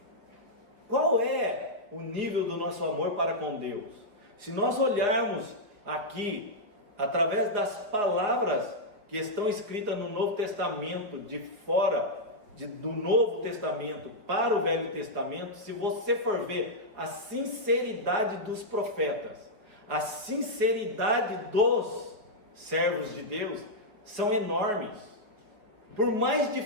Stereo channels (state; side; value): late; left; 5.1 ms